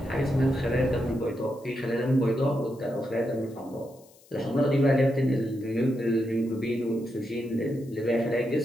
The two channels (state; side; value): noise; left; hiss, 28 dB below the sound